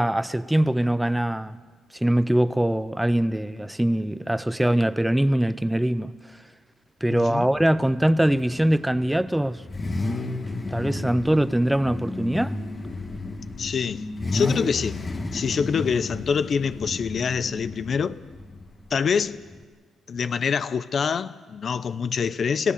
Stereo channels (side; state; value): both; normal; correlation 0.94